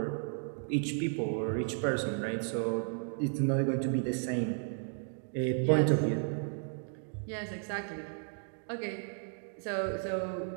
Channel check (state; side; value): silent; left; 55 dB below the other